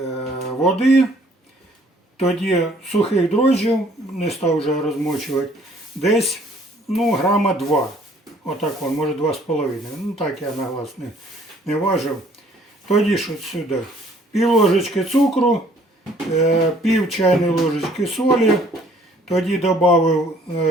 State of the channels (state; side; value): normal; both; correlation 0.59